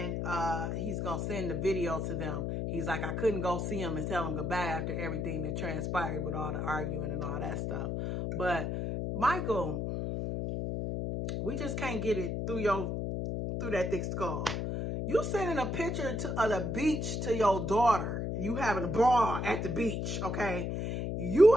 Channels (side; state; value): left; noise; hum, 2 dB below the sound